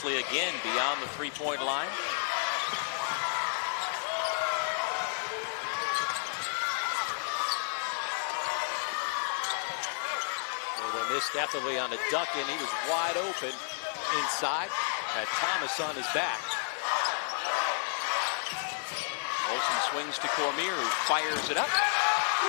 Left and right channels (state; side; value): silent; right; digital silence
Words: again beyond the three-point line. Well, they missed Etherly on a duck in. He was wide open inside. Had Thomas on his back. Olsen swings to Cormier, who fires it up.